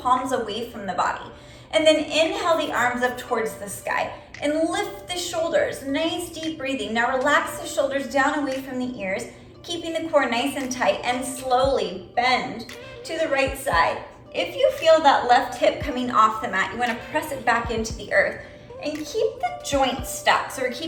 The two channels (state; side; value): identical; both; correlation 1.00